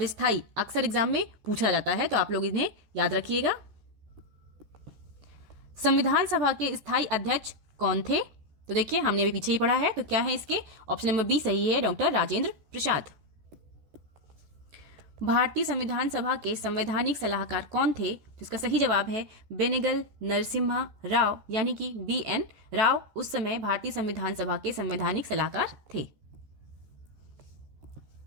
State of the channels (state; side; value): late; left; 14 ms